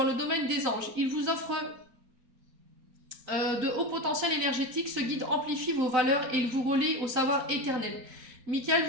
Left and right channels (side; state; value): left; late; 3.9 ms